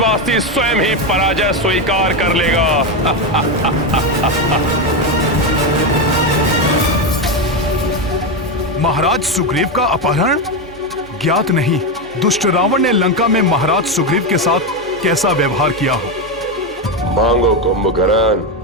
स्वयं ही पराजय स्वीकार कर लेगा। महाराज सुग्रीव का अपहरण? ज्ञात नहीं दुष्ट रावण ने लंका में महाराज सुग्रीव के साथ कैसा व्यवहार किया हो। मांगो कुंभकर्ण।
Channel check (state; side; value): normal; both; correlation 0.11